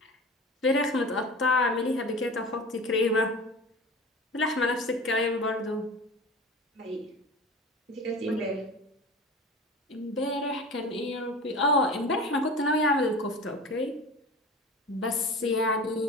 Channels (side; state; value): both; normal; correlation 0.34